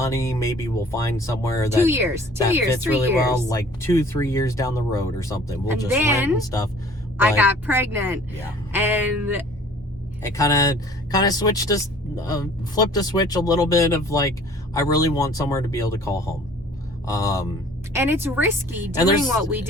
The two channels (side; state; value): both; normal; correlation 0.51